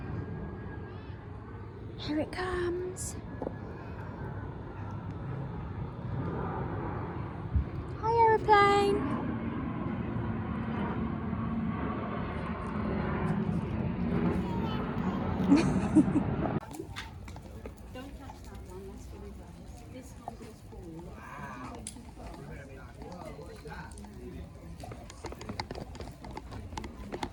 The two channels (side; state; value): both; identical; correlation 1.00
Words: Here it comes. Hi, aeroplane.